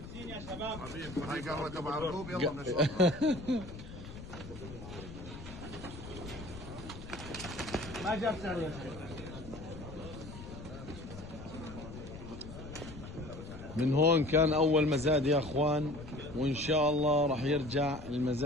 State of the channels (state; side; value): noise; left; rumble, 13 dB below the sound